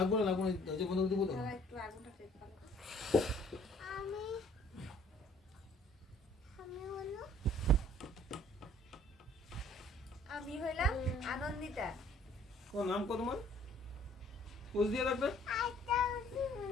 না দরজা বন্ধ করে দেবো তো। তারা একটু আগুনটা টেপ ভালো। আমি হইলাম আনন্দিতা। ও নাম কত তোমার? পোজ দিয়ে রাখবে।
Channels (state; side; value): normal; both; correlation 0.57